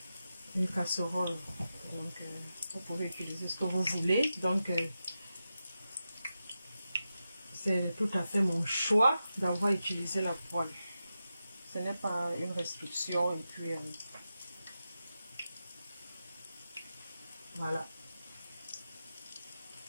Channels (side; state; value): both; inverted; correlation -0.90